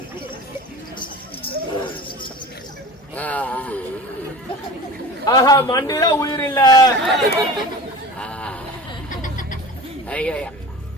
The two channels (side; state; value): both; normal; correlation 0.37